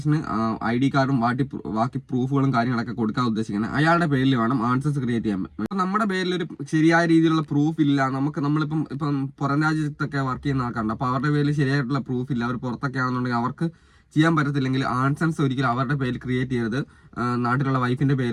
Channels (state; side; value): identical; both; correlation 1.00